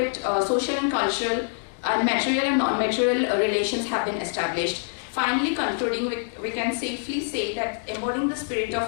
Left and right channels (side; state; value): right; silent; digital silence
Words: social and cultural and material and non-material relations have been established. Finally, concluding, we can safely say that embodying the spirit